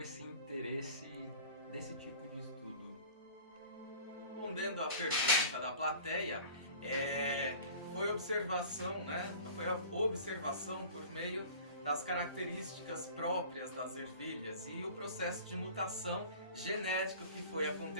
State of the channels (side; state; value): both; inverted; correlation -0.43